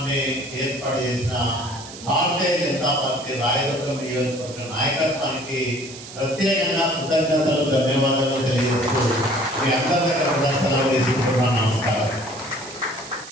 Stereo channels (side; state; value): right; noise; hiss, 15 dB below the sound